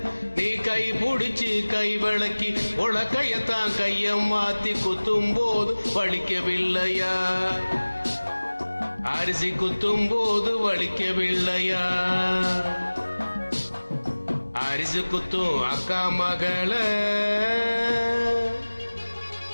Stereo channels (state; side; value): inverted; both; correlation -1.00